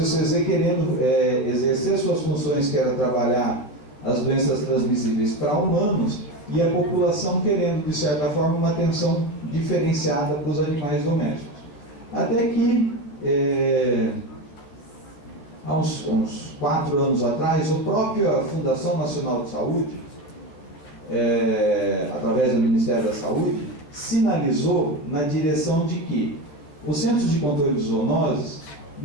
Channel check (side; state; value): right; late; 14 ms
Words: querendo exercer suas funções, que era trabalhar as doenças transmissíveis para humanos, e a população querendo, de certa forma, uma atenção diferenciada para os animais domésticos. Até que, há uns 4 anos atrás, a própria Fundação Nacional de Saúde, através do Ministério da Saúde, sinalizou na direção de que os Centros de Controle de Zoonoses